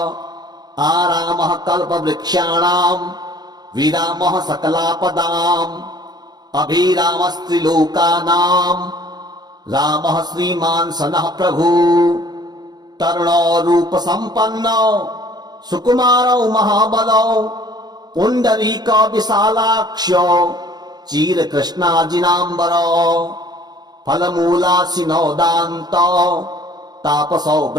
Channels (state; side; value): late; left; 0.20 ms